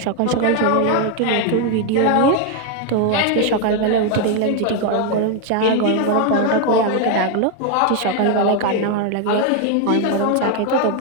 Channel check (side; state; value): both; different; correlation 0.01